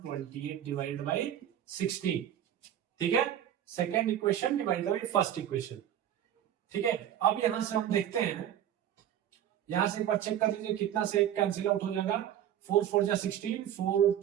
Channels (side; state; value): left; quieter; 10.6 dB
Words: divided by 16। ठीक है, second equation divided by first equation. ठीक है, अब यहां से हम देखते हैं, यहां से एक बार चेक कर लीजिए कितना से एक कैंसिल आउट हो जाएगा, 4 4 जा 16, 4